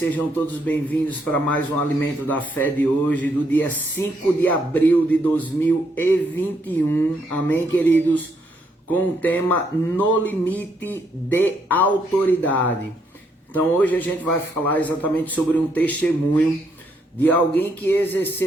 todos bem-vindos para mais um Alimento da Fé de hoje, do dia 5 de abril de 2021, amém, queridos? Com o tema No Limite de Autoridade. Então hoje a gente vai falar exatamente sobre um testemunho de alguém que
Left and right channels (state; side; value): normal; both; correlation 0.74